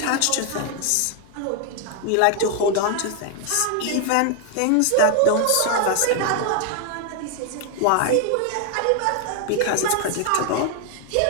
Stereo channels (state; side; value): different; both; correlation 0.00